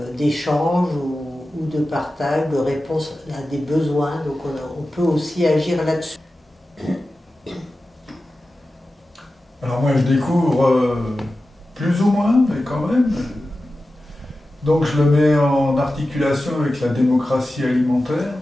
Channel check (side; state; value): both; normal; correlation 0.94